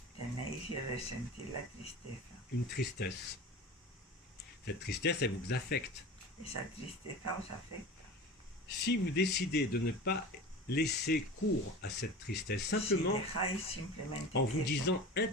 Tenéis que ressentir la tristeza. une tristesse. Cette tristesse, elle vous affecte. Esa tristeza os afecta. Si vous décidez de ne pas laisser cours à cette tristesse, simplement Si dejáis simplemente en vous eso, disant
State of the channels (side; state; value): both; normal; correlation 0.34